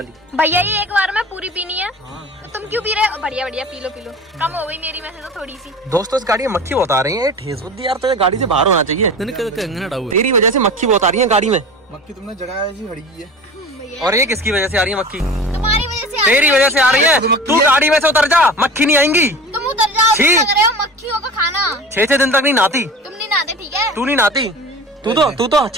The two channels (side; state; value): both; normal; correlation 0.35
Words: भैया ये एक बार में पूरी पीनी है। तो तुम क्यों पी रहे हो? बढ़िया बढ़िया पी लो पी लो, कम हो गई मेरी में से तो थोड़ी सी। दोस्तों इस गाड़ी में मक्खी बहुत आ रही है, ठेस बुद्धि यार, तो गाड़ी से बाहर होना चाहिए। तेरी वजह से मक्खी बहुत आ रही है गाड़ी में। मक्खी तुमने जगह ऐसी खड़ी की है। भैया और ये किसकी वजह से आ रही है मक्खी? तुम्हारी वजह से तेरी वजह से आ रही है। तू गाड़ी में से उतर जा, मक्खी नहीं आएंगी। तुम उतर जाओ, छी। तुम लग रहे हो मक्खियों का खाना। 6 दिन तक नहीं नहाती, तुम नहीं नहाते, ठीक है? तू नहीं नहाती, तू तो